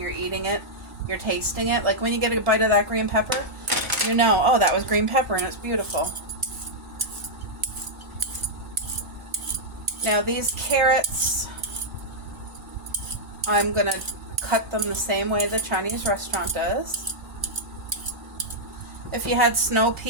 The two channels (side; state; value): both; normal; correlation -0.07